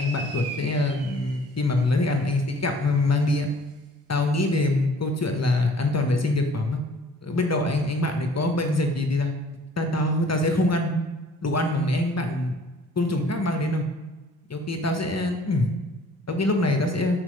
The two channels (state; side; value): normal; both; correlation 0.54